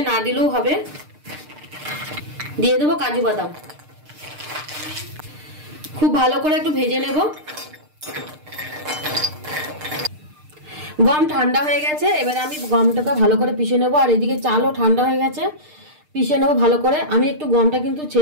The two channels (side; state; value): left; late; 6.6 ms